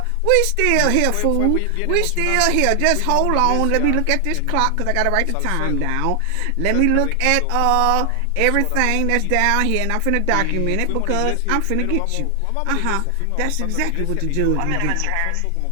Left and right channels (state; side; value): different; both; correlation 0.00